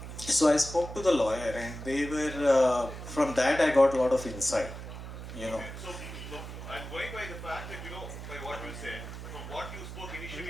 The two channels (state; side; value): noise; right; hum, 10 dB below the sound